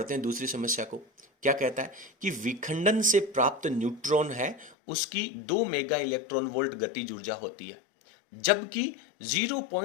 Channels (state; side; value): drops out; right; at 4.8 s